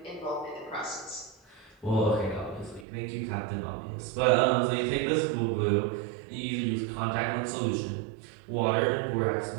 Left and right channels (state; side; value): drops out; left; at 2.9 s